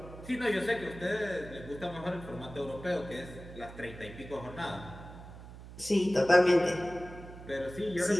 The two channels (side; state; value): right; noise; hum, 15 dB below the sound